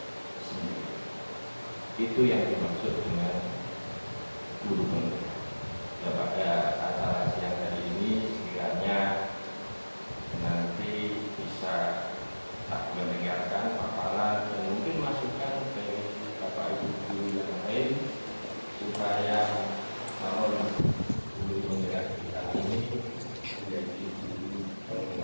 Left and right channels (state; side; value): inverted; both; correlation -1.00